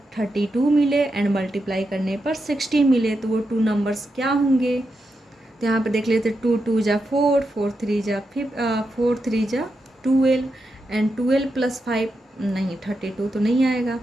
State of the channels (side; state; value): both; normal; correlation 0.86